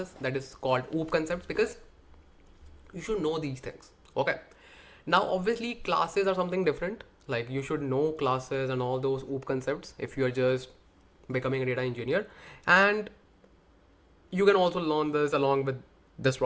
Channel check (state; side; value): identical; both; correlation 1.00